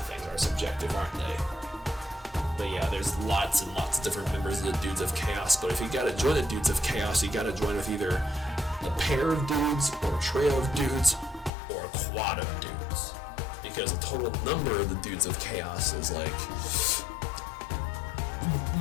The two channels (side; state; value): right; drops out; at 11.5 s